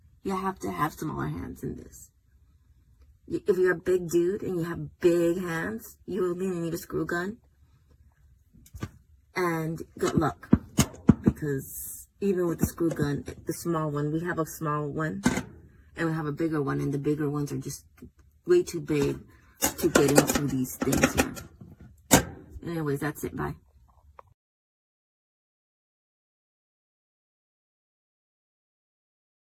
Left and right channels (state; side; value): identical; both; correlation 1.00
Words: You have to have smaller hands in this. If you're a big dude and you have big hands, you will need a screw gun. And good luck, because even with the screw gun, the small one, we have a small one and we have a bigger one, and the bigger ones are just way too big to get into these things here. Anyways, that's it. Bye.